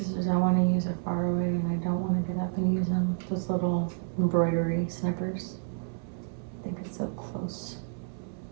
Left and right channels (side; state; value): left; silent; 57 dB below the other